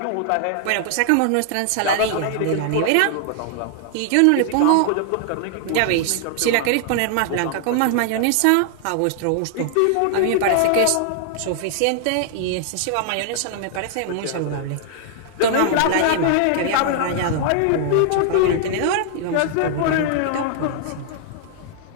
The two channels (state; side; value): different; both; correlation -0.01